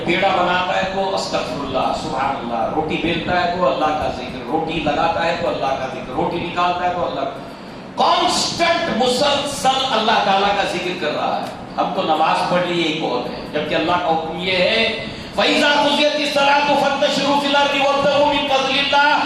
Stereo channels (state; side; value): identical; both; correlation 1.00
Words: پیڑا بناتا ہے تو استغفر اللہ سبحان اللہ, روٹی بیلتا ہے تو اللہ کا ذکر, روٹی لگاتا ہے تو اللہ کا ذکر, روٹی نکالتا ہے تو اللہ. کانسٹنٹ مسلسل اللہ تعالیٰ کا ذکر کر رہا ہے. ہم تو نماز پڑھ لی یہی بہت ہے، جبکہ اللہ کا حکم یہ ہے فَإِذَا قُضِيَتِ الصَّلَاةُ فَانتَشِرُوا فِي الْأَرْضِ وَابْتَغُوا مِن فَضْلِ اللَّهِ